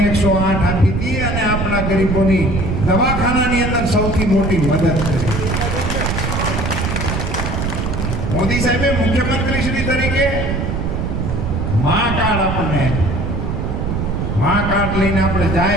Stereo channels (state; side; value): noise; right; rumble, 1 dB below the sound